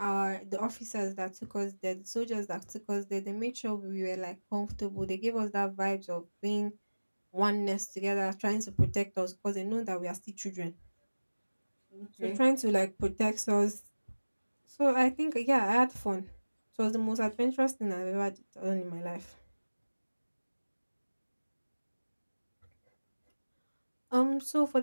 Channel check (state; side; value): inverted; both; correlation -1.00